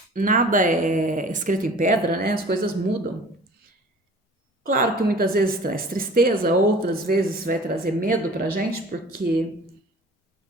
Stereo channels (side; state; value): both; normal; correlation 0.46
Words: Nada é escrito em pedra, né? As coisas mudam. Claro que muitas vezes traz tristeza, outras vezes vai trazer medo pra gente, porque